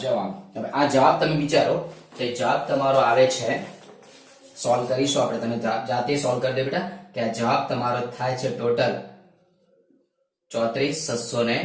જવાબ. હવે આ જવાબ તમે વિચારો કે જવાબ તમારો આવે છે, સોલ્વ કરીશું આપણે. તમે જાતે સોલ્વ કરી દો બેટા કે આ જવાબ તમારો થાય છે ટોટલ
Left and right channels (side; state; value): both; identical; correlation 1.00